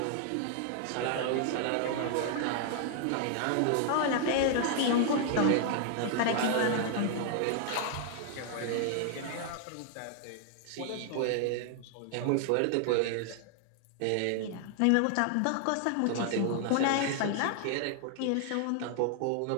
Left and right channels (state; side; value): different; both; correlation 0.00